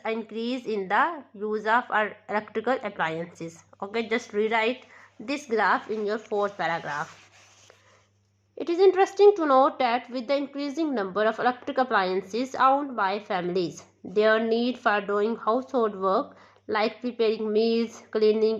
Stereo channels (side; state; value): both; identical; correlation 1.00